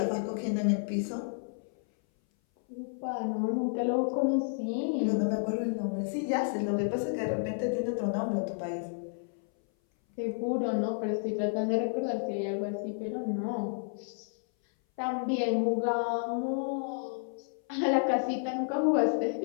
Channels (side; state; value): right; silent; 57 dB below the other